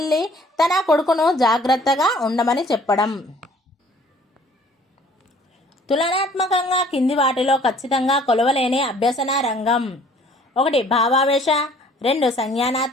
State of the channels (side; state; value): both; normal; correlation 0.55